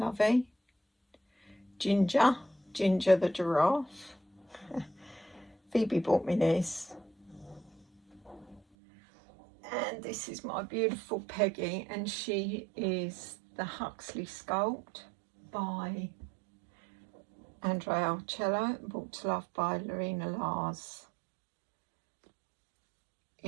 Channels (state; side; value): drops out; left; at 8.6 s